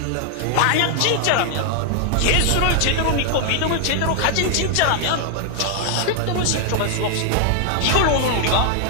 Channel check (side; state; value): both; different; correlation 0.00